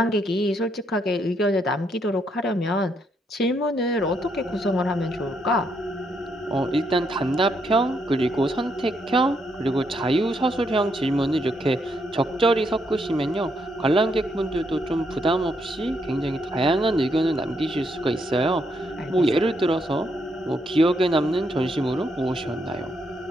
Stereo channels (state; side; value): normal; both; correlation 0.76